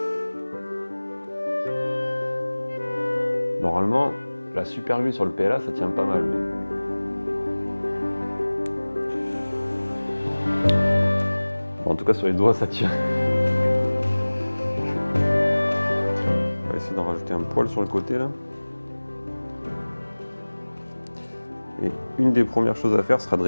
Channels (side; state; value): both; inverted; correlation -1.00